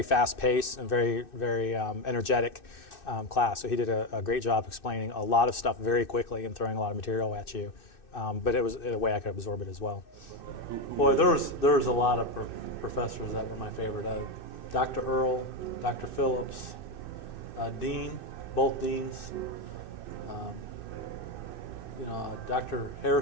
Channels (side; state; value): right; late; 2.6 ms